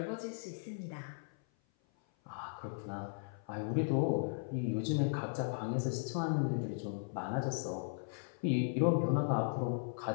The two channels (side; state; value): right; silent; 53 dB below the other